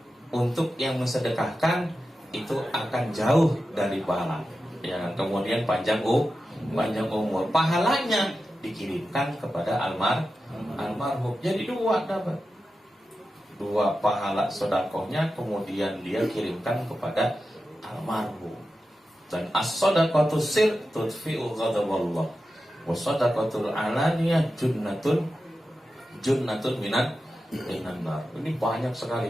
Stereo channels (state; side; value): normal; both; correlation 0.92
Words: Untuk yang mensedekahkan itu akan jauh dari pahala. Ya, kemudian panjang umur. Pahalanya dikirimkan kepada almarhum. Jadi dapat dua pahala sedekahnya, kemudian dia kirimkan kepada almarhum. Dan as-shadaqatu sir tudfi'u ghadaballah. Wa shadaqatul alaniyah junnatun minan. Ini banyak